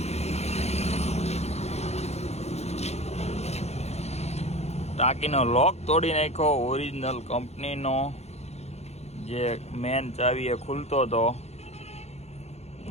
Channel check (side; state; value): right; late; 0.31 ms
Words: ટાંકીનો લોક તોડી નાખ્યો. ઓરિજિનલ કંપનીનો જે મેન ચાવી એ ખુલતો હતો